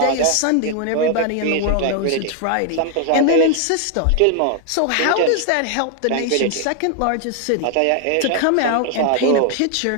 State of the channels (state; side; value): different; both; correlation 0.00